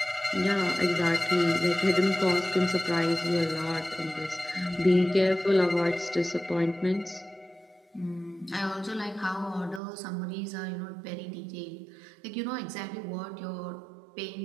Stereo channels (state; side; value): drops out; left; at 9.8 s